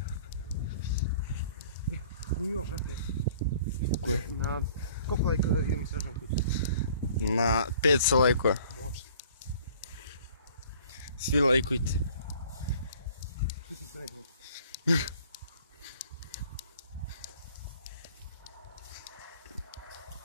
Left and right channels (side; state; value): both; inverted; correlation -0.53